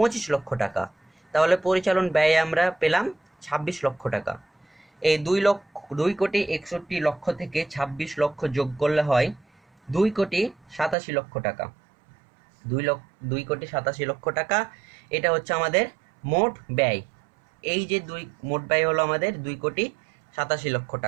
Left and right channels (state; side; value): drops out; left; at 11.0 s